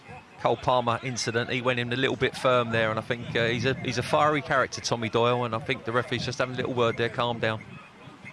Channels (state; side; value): identical; both; correlation 1.00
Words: Cole Palmer incident, he went in a little bit firm there, and I think he's a fiery character, Tommy Doyle, and I think the referee's just having a little word there, calm down.